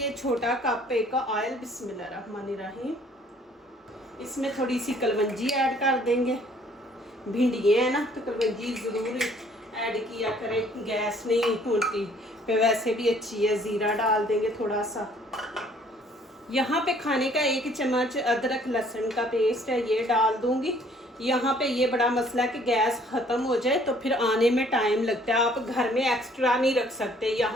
छोटा कप एक ऑयल। बिस्मिल्लाहिर्रहमानिर्रहीम। इसमें थोड़ी सी कलवंजी ऐड कर देंगे। भिंडियाँ है ना, तो कलवंजी ज़रूर ऐड किया करें, गैस नहीं होती पे, वैसे भी अच्छी है। ज़ीरा डाल देंगे थोड़ा सा। यहाँ पे खाने का 1 चम्मच अदरक लहसुन का पेस्ट है, ये डाल दूंगी। यहाँ पे ये बड़ा मसला है कि गैस ख़त्म हो जाए तो फिर आने में टाइम लगता है। आप घर में एक्स्ट्रा नहीं रख सकते,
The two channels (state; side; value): normal; both; correlation 0.59